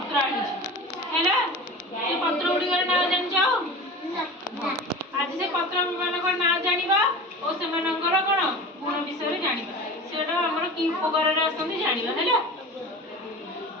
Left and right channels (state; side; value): normal; both; correlation 0.34